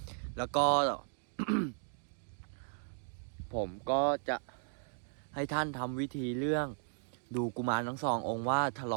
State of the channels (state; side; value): silent; left; digital silence